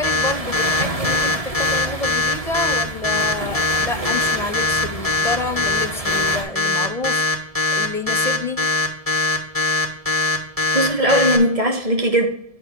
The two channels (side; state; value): left; late; 1.7 ms